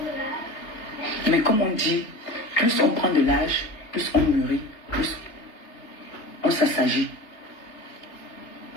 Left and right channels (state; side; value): late; right; 3.2 ms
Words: Mais comme on dit, plus on prend de l'âge, plus on mûrit, plus on s'assagit.